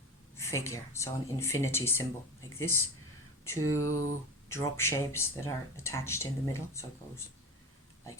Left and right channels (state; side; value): normal; both; correlation 0.28